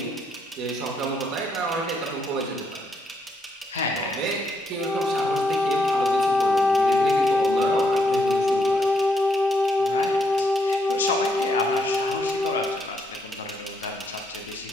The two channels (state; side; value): normal; both; correlation 0.76